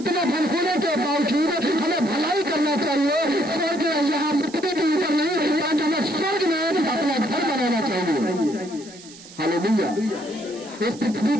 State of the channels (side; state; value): right; noise; hiss, 19 dB below the sound